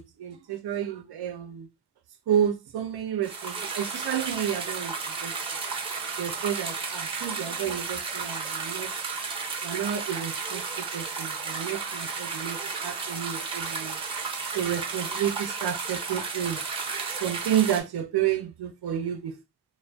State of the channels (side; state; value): left; quieter; 7.4 dB